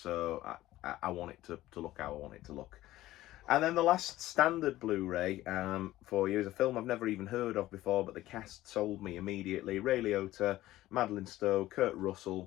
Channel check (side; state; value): right; quieter; 15.7 dB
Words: I want it to look how I want it to look. And then the last standard Blu-ray for you is a film I've never even heard of before, but the cast sold me immediately. Ray Liotta, Madeleine Stowe, Kurt